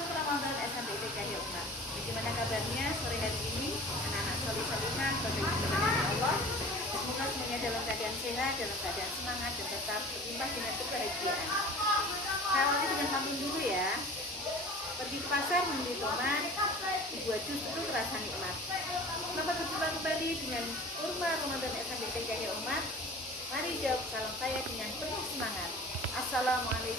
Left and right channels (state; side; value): normal; both; correlation 0.41